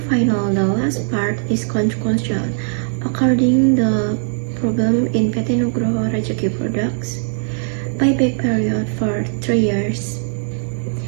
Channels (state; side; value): silent; left; digital silence